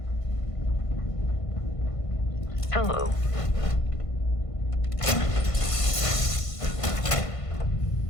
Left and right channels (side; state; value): right; late; 1.5 ms